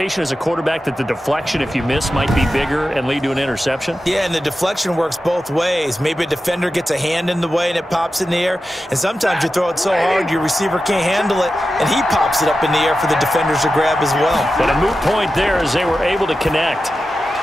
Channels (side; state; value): both; normal; correlation 0.92